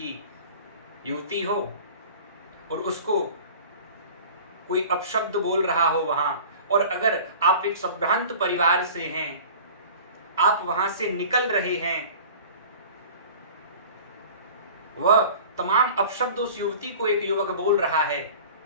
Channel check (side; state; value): both; inverted; correlation -0.42